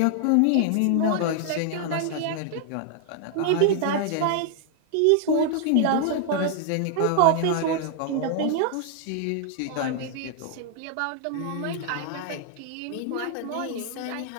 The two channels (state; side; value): different; both; correlation 0.00